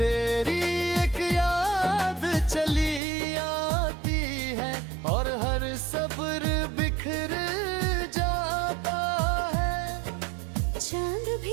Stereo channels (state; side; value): drops out; left; at 3.0 s